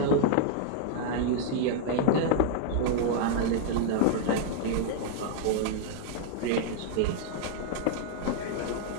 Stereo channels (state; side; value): different; both; correlation -0.01